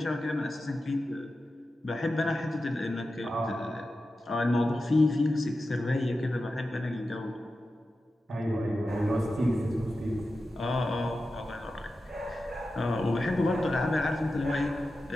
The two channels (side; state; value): both; normal; correlation 0.92